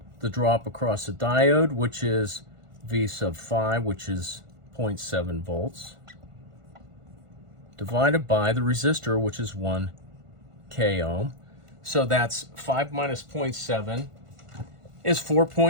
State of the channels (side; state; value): left; late; 1.5 ms